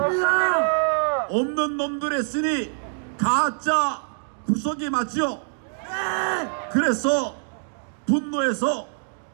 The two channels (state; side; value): silent; left; digital silence